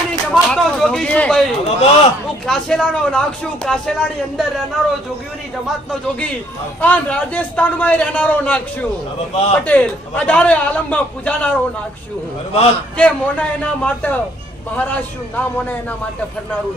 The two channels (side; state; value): both; normal; correlation 0.65